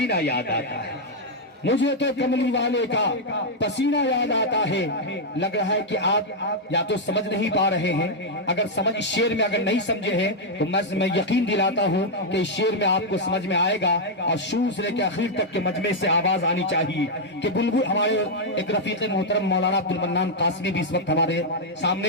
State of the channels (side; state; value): both; normal; correlation -0.02